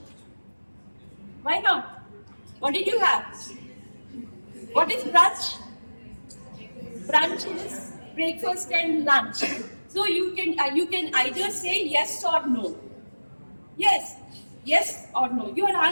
Why not? What did you have? What is brunch? Brunch is breakfast and lunch. So you can either say yes or no. Yes, yes or no. Your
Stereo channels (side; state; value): both; inverted; correlation -1.00